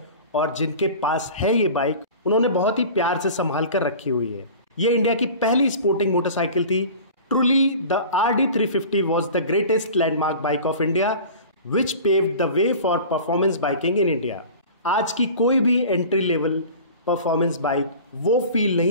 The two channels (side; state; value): both; inverted; correlation -0.39